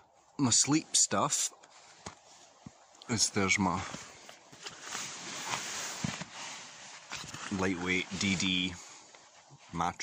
My sleep stuff is, there's my lightweight DD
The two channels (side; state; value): both; identical; correlation 1.00